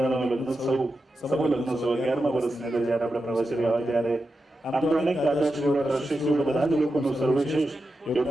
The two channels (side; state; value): both; normal; correlation 0.90